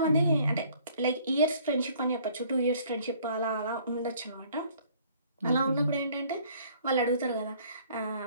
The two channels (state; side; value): inverted; both; correlation -0.57